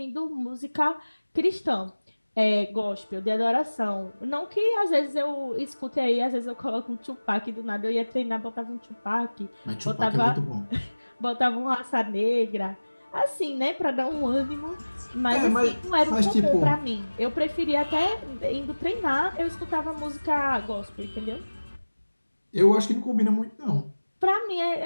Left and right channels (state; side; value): inverted; both; correlation -1.00